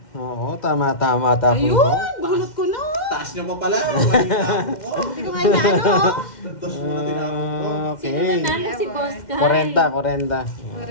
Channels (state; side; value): late; right; 2.1 ms